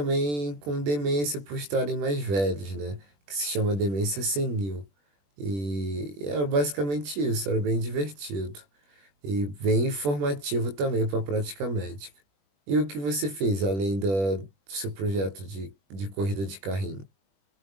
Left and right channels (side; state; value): left; late; 21 ms